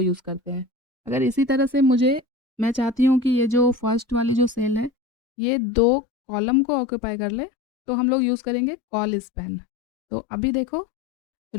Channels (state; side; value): drops out; right; at 4.9 s